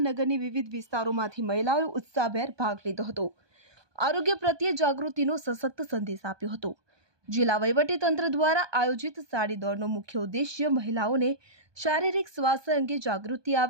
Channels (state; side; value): late; left; 1.2 ms